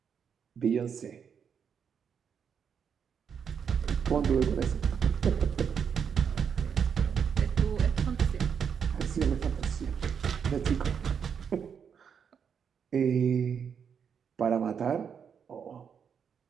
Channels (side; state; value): left; quieter; 7.2 dB